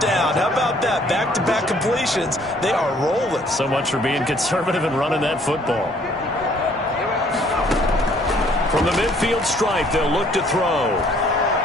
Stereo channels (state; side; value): normal; both; correlation 0.61